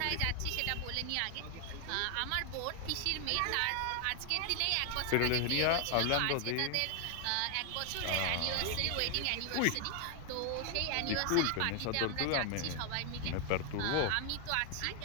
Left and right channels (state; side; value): different; both; correlation 0.00